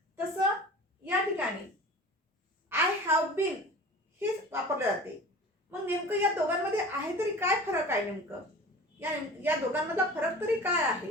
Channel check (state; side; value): normal; both; correlation 0.39